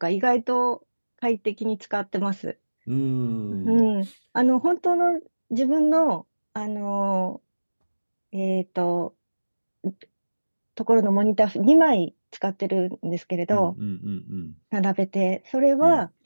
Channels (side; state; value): both; inverted; correlation -1.00